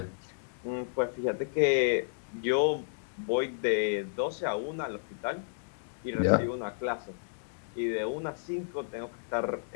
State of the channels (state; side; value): silent; right; digital silence